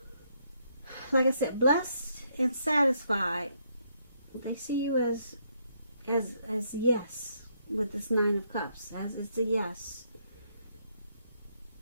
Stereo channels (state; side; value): inverted; both; correlation -0.73